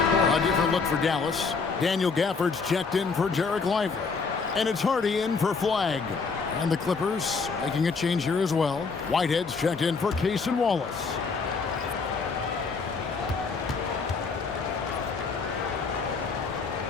different look for Dallas. Daniel Gafford's checked in for Jarek Lively. And it's Hardy in for Flag. And the Clippers making a change here as well. Whitehead's checked in for Cason Wallace.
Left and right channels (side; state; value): right; quieter; 4.8 dB